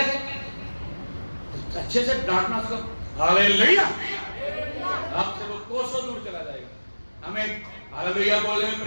अच्छे से डांटना उसको, हालेलुया, आपसे वो कोसों दूर चला जाएगा। हमें हालेलुया बोलने में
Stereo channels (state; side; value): inverted; both; correlation -1.00